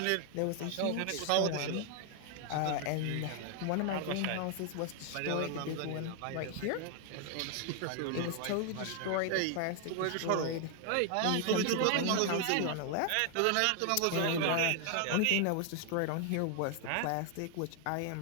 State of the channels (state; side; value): different; both; correlation 0.00